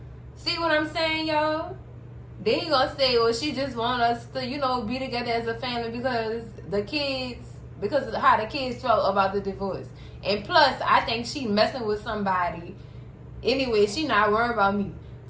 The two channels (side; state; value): both; identical; correlation 1.00